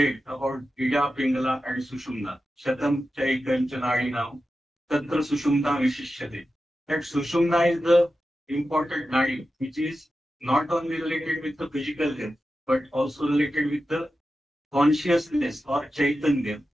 about Ida, Pingala, and Sushumna. Shatam Chaikam Chanadinam, Tatra Sushumna Vishishyate. That Sushumna is the important nadi, which is not only related with the physical health, but also related with the consciousness or Chaitanya,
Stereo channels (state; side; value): normal; both; correlation 0.92